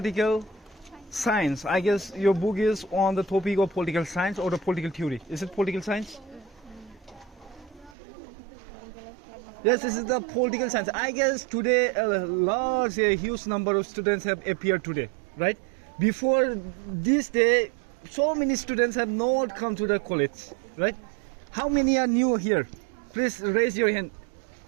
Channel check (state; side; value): drops out; left; at 8.0 s